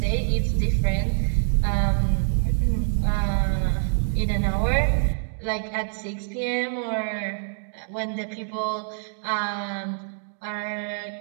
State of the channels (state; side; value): silent; left; digital silence